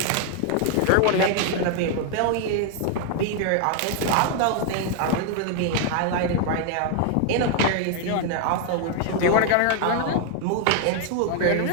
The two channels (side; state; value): both; different; correlation 0.00